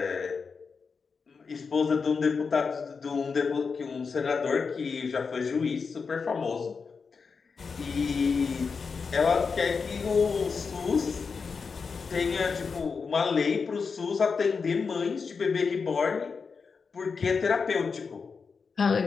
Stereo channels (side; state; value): right; quieter; 5.2 dB